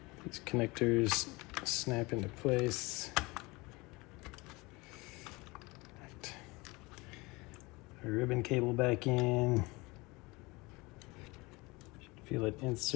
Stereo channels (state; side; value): quieter; right; 24.1 dB